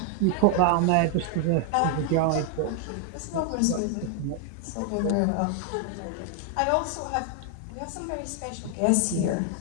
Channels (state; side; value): different; both; correlation 0.00